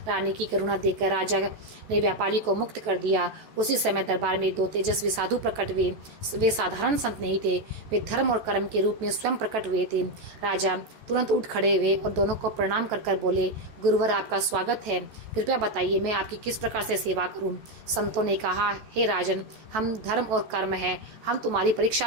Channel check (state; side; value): late; left; 14 ms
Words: रानी की करुणा देखकर राजा ने व्यापारी को मुक्त कर दिया। उसी समय दरबार में 2 तेजस्वी साधु प्रकट हुए। वे साधारण संत नहीं थे, वे धर्म और कर्म के रूप में स्वयं प्रकट हुए थे। राजा तुरंत उठ खड़े हुए और दोनों को प्रणाम कर बोले, गुरुवर, आपका स्वागत है, कृपया बताइए मैं आपकी किस प्रकार से सेवा करूं? संतों ने कहा, हे राजन, हम धर्म और कर्म है, हम तुम्हारी परीक्षा